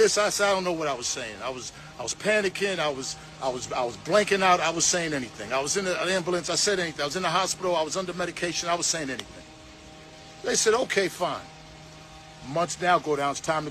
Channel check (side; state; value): both; identical; correlation 1.00